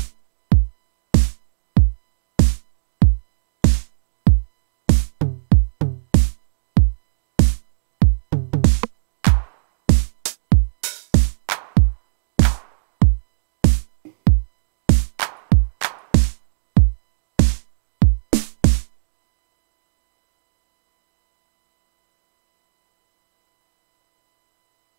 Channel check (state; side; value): silent; left; digital silence